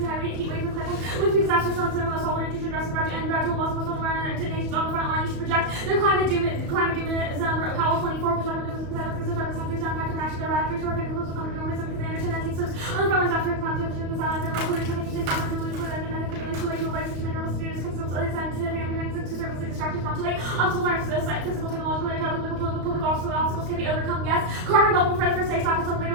high rate heat wave from climate. When we disaster storms and loss, all water intrusion, dress and gradual loss of coastal environment to nations on the front line, you should project their climate doom Powell 24 perspective because of the countries that impact of action their radically short effect close to common norms because they understand that takes on the front lines after climate change and silence and local research takes on the belief with economic too late to life such a mineral students consumes other scientific and to service distractions not too late. Obstacles are physical, technological, public obstacles can be overcome. Yes, carbon bubble for the first stage factors later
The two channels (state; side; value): late; left; 34 ms